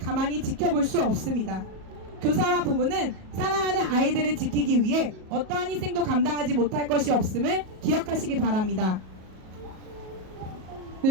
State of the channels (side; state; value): left; late; 37 ms